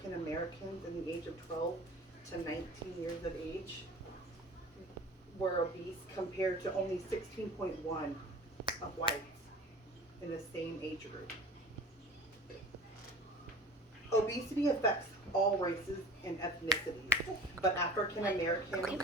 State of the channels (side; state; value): both; normal; correlation 0.40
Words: Americans in the age of 12 to 19 years of age were obese, compared to only 16.1 of whites in the same age group. Obesity affects all races and ethnicities, but African Americans